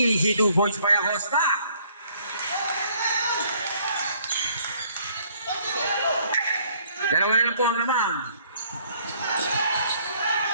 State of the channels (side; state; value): both; inverted; correlation -0.62